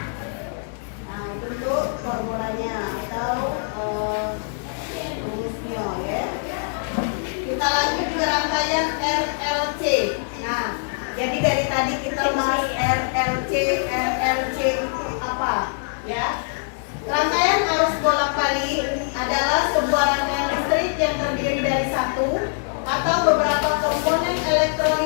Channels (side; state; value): right; silent; digital silence